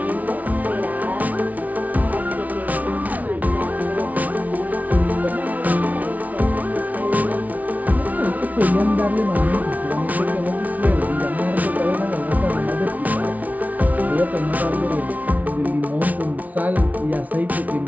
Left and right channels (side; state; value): left; late; 0.073 ms